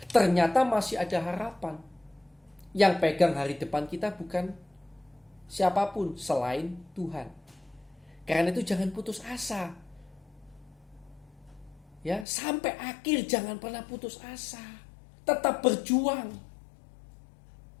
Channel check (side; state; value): right; drops out; at 12.2 s